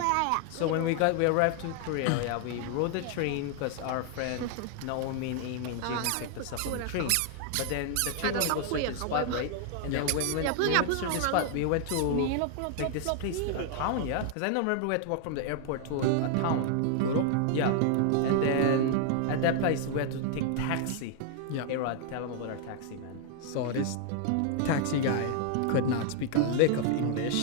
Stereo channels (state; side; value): different; both; correlation 0.00